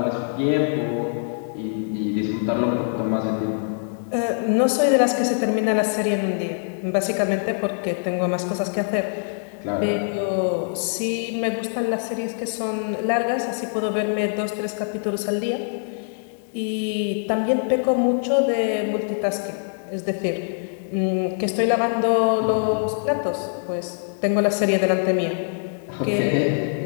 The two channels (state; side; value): silent; right; 61 dB below the other